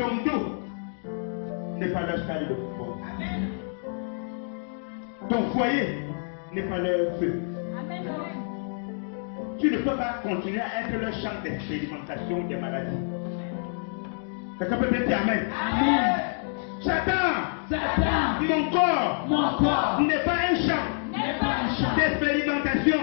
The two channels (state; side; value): silent; right; 59 dB below the other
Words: dos n'est pas leur salle de football. Ton foyer n'est pas leur feu. Tu ne peux pas continuer à être leur champ d'expérimentation des maladies. Quelqu'un peut dire Amen? Amen. Satan, mon corps n'est pas un champ d'expérimentation.